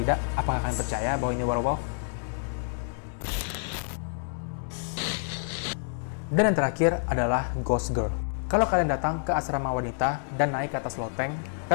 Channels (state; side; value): silent; right; digital silence